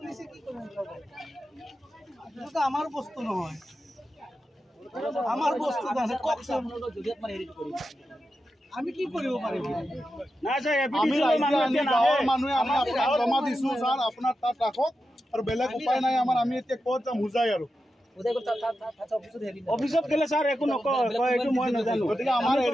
কি কৰব এটা আমাৰ বস্তু নহয় আমাৰ বস্তু আছে ককসম যদি আপনি হেৰিট কৰি আমি কি কৰিব পাৰিম না স্যাৰ আমি গাঁৱৰ মানুহে আমি আপোনাক জমা দিছো স্যাৰ আপোনাৰ তাত ৰাখক আৰু বেলেগ উপায় নাই আমাৰ আমি এতিয়া ক'ত যাম বুজাই আৰু অফিসত গেলে স্যাৰ একো নকয় এইটো মই নাজানো গতিকে আমাৰ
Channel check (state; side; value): normal; both; correlation 0.90